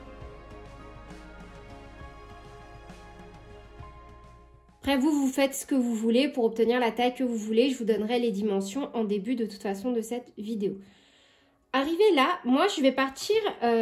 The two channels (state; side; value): identical; both; correlation 1.00